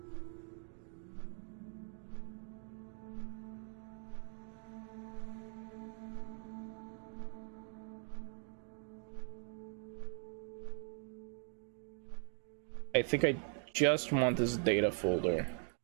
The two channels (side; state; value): left; silent; 50 dB below the other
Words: I think I just want this data folder.